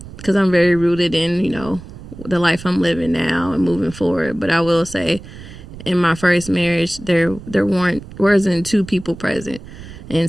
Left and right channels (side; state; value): right; noise; rumble, 15 dB below the sound